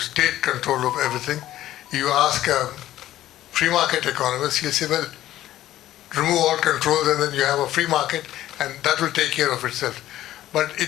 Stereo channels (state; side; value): quieter; right; 13.7 dB